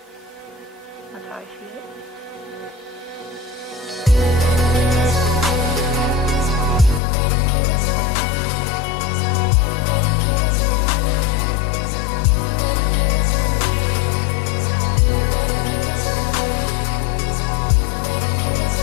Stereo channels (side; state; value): right; drops out; at 7.0 s